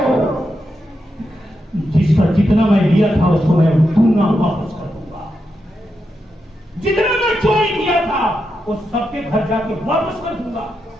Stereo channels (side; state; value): both; normal; correlation 0.86